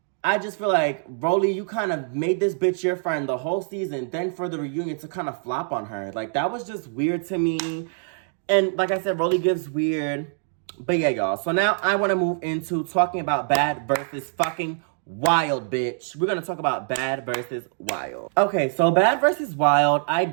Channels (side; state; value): left; silent; 62 dB below the other